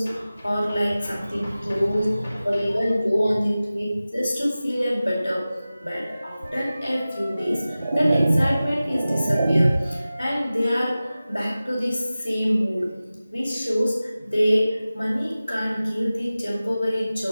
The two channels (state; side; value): inverted; both; correlation -0.96